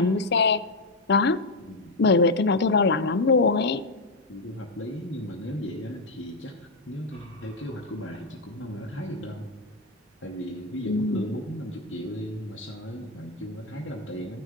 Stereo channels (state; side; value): quieter; right; 3.0 dB